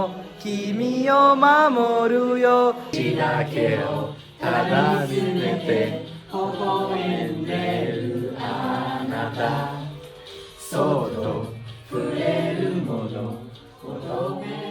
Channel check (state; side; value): identical; both; correlation 1.00